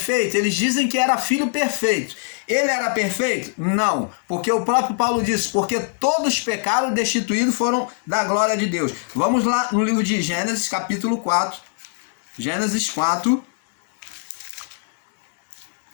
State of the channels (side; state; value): right; silent; digital silence